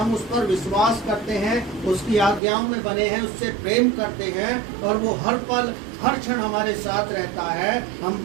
उस पर विश्वास करते हैं, उसकी आज्ञाओं में बने हैं, उससे प्रेम करते हैं और वो हर पल हर क्षण हमारे साथ रहता है, हम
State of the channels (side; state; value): left; drops out; at 2.4 s